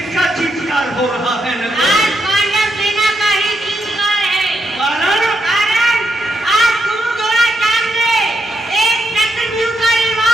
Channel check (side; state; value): both; normal; correlation 0.81